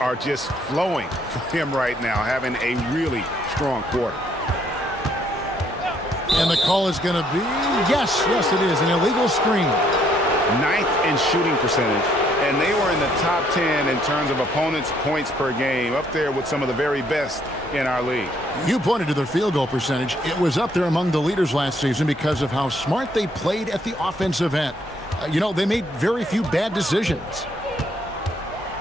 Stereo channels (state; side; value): normal; both; correlation 0.68